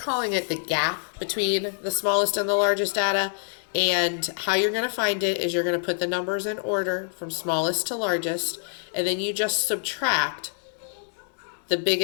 it the gap between the smallest and the largest data. And how you're going to find it is you're going to put the numbers in order from smallest to largest, and then you just subtract the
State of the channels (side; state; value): right; silent; digital silence